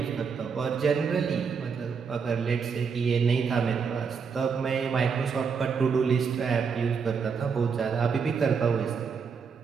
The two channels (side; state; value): left; quieter; 5.9 dB